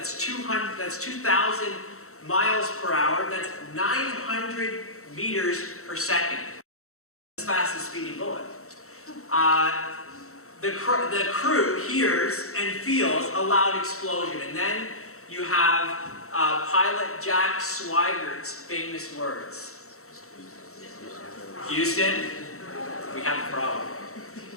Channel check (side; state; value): right; late; 0.64 ms